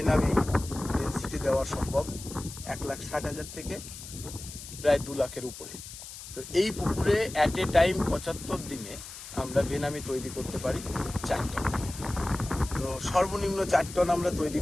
ডেন্সিটি দেওয়া সম্ভব 1,60,000 থেকে প্রায় 2 লাখের উপরে। তো এই পুকুরে অ্যাট এ টাইম 75 দিনে আমরা ভেনামি তৈরি করতে পারি 4 টন। তো সর্বনিম্ন 4 টন আমরা তৈরি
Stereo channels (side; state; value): left; noise; hiss, 13 dB below the sound